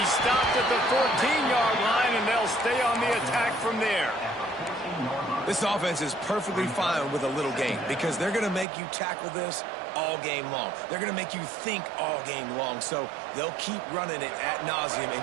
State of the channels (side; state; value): left; drops out; at 8.7 s